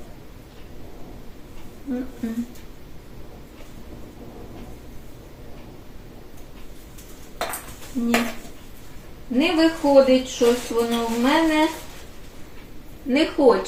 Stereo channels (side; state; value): both; identical; correlation 1.00